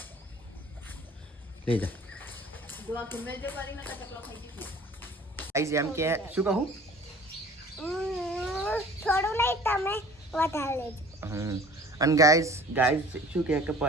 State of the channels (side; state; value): both; normal; correlation 0.47